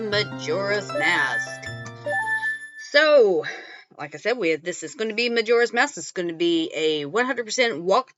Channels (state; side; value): identical; both; correlation 1.00